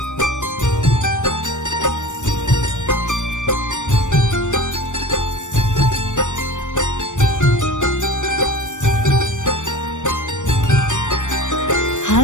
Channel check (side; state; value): right; late; 0.85 ms